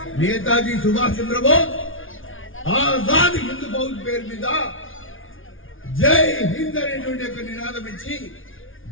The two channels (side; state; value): right; late; 0.58 ms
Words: నేతాజీ సుభాష్ చంద్రబోస్ ఆజాద్ హింద్ ఫౌజ్ పేరు మీద జై హింద్ అనేటువంటి యొక్క నినాదం ఇచ్చి